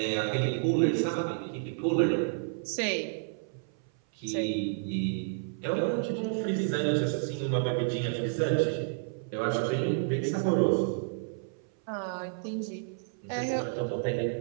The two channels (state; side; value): silent; left; 57 dB below the other